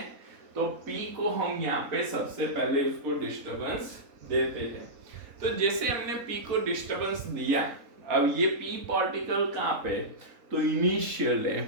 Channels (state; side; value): late; left; 4.0 ms